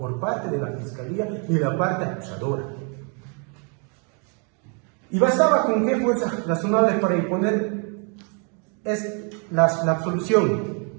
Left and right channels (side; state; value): left; quieter; 37.6 dB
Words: parte de la Fiscalía ni la parte acusadora. Y bastaba con qué fuerza razonable para imponer la absolución.